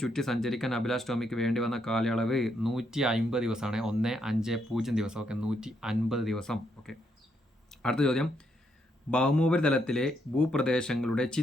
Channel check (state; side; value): normal; both; correlation 0.76